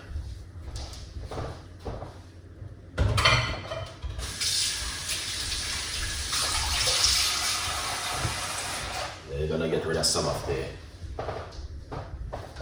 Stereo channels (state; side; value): identical; both; correlation 1.00